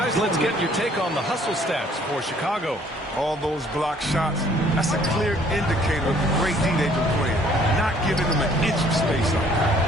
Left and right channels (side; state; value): both; normal; correlation 0.60